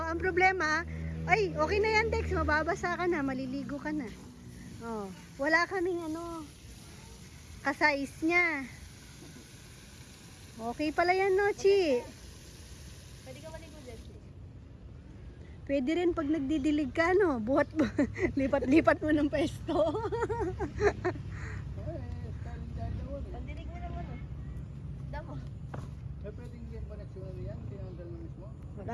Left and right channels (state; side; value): identical; both; correlation 1.00